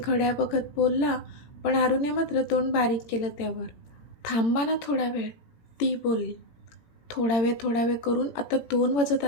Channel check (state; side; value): late; right; 18 ms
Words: बघत बोलला, पण आरूने मात्र तोंड बारीक केलं त्यावर. थांबा ना थोडा वेळ, ती बोलली. थोडा वेळ करून आता 2 वाजत